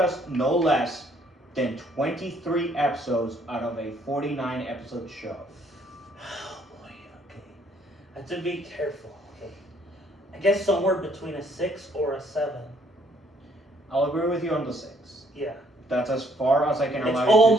no less than 23 episodes out of a 49 episode show. Oh boy, okay. I have to be careful, okay. I guess somewhere between a 6 or a 7. I'll agree with you on the 6. Yeah. That's as far as I can allow It's you to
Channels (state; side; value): normal; both; correlation 0.65